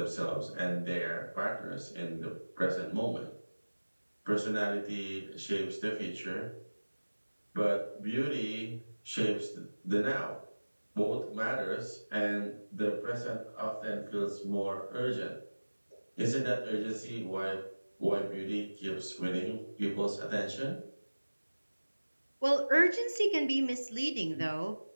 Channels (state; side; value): inverted; both; correlation -1.00